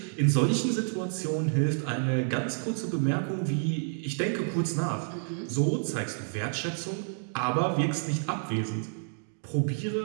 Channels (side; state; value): left; silent; digital silence